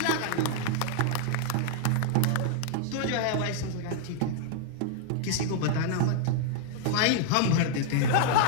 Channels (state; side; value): different; both; correlation -0.01